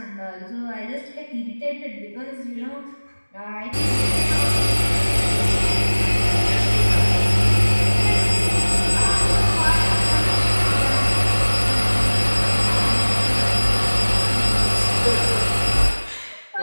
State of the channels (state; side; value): inverted; both; correlation -1.00